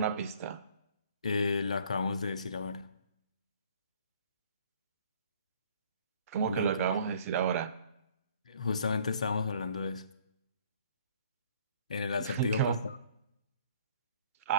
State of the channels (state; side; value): inverted; both; correlation -0.56